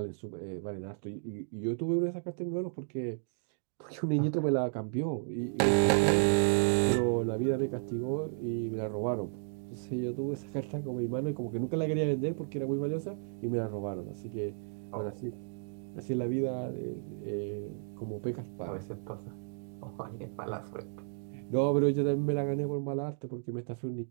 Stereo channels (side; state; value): left; silent; digital silence